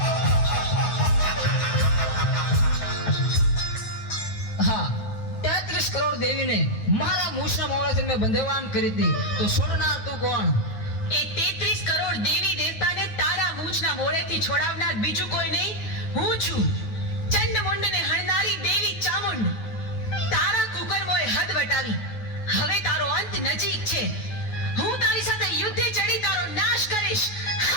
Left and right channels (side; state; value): right; late; 9.5 ms